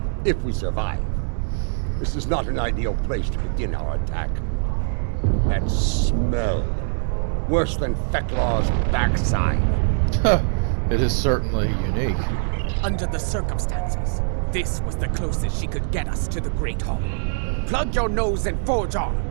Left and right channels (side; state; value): left; silent; 64 dB below the other